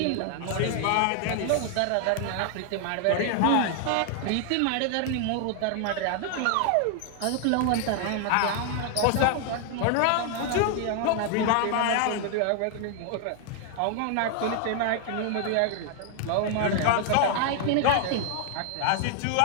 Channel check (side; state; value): both; different; correlation 0.00